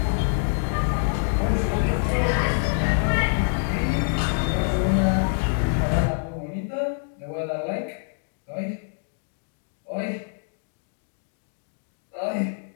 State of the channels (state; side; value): silent; right; digital silence